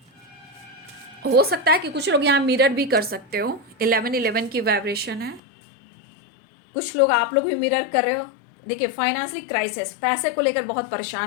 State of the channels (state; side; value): drops out; right; at 5.4 s